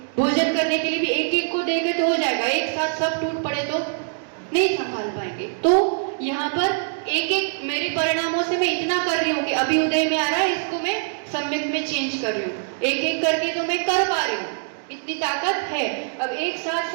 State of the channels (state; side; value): silent; left; digital silence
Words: भोजन करने के लिए भी एक एक को देंगे तो हो जाएगा, एक साथ सब टूट पड़े तो नहीं संभाल पाएंगे। तो यहाँ पर एक एक मेरे परिणामों से मैं इतना कर रही हूँ कि अभी उदय में आ रहा है, इसको मैं सम्यक में चेंज कर रही हूँ, एक एक करके तो मैं कर पा रही हूँ, इतनी ताकत है। अब एक साथ